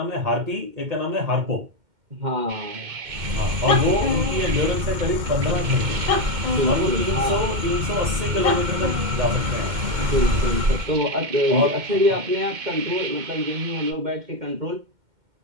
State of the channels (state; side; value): late; left; 2.1 ms